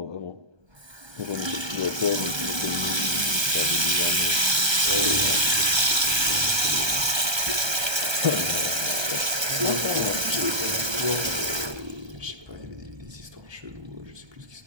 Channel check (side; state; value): left; late; 1.3 ms